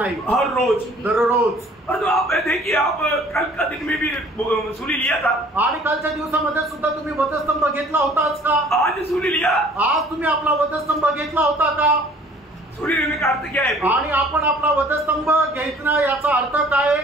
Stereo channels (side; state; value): both; normal; correlation 0.54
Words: हर रोज दररोज। और तो आप देखिए, आप कल का दिन में भी सूर्य लिया था, आणि कालच्या दिवसामध्ये सुद्धा तुम्ही वधस्तंभ घेतला होताच का? आज सूर्य लिया, आज तुम्ही आपला वधस्तंभ घेतला होता का? सूर्य लेने का अर्थ क्या है? आणि आपण आपला वधस्तंभ घेतला याचा अर्थ काय?